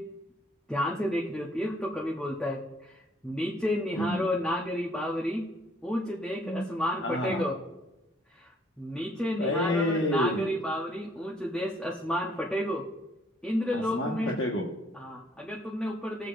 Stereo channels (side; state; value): both; normal; correlation 0.64